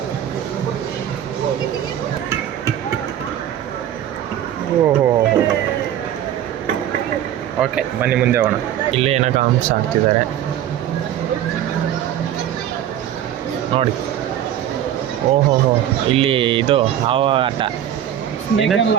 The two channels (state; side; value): quieter; left; 10.9 dB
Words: ಓಹೋ, ಓಕೆ ಬನ್ನಿ ಮುಂದೆ ಹೋಗೋಣ. ಇಲ್ಲಿ ಏನೋ ಕಾಮ್ಸ್ ಆಗ್ತಿದ್ದಾರೆ ನೋಡಿ. ಓಹೋ, ಇಲ್ಲಿ ಇದು ಯಾವ ಆಟ?